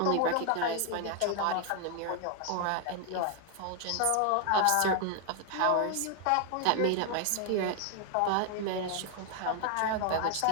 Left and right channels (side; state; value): both; different; correlation 0.00